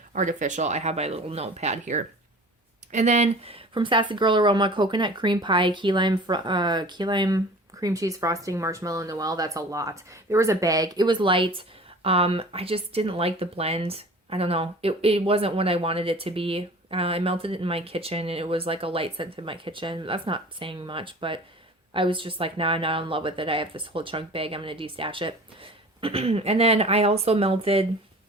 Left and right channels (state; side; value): normal; both; correlation 0.42